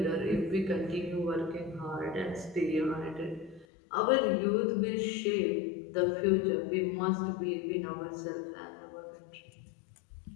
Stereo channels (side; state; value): right; drops out; at 3.7 s